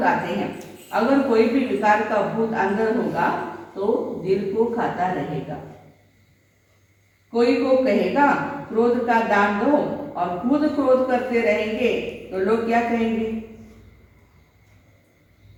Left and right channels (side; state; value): both; identical; correlation 1.00